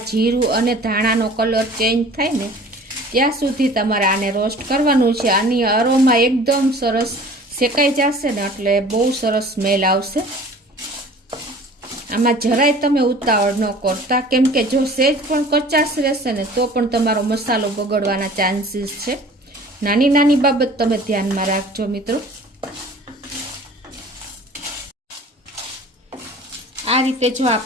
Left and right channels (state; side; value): normal; both; correlation 0.46